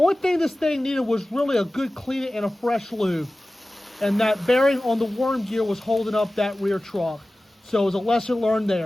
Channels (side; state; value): both; normal; correlation 0.96